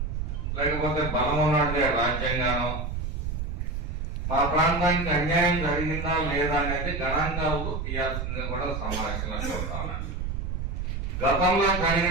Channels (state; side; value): noise; right; rumble, 3 dB below the sound